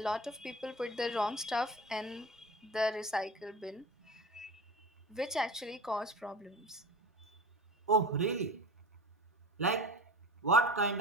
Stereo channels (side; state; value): both; normal; correlation 0.33